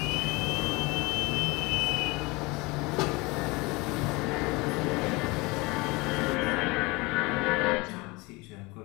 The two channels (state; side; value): quieter; right; 24.7 dB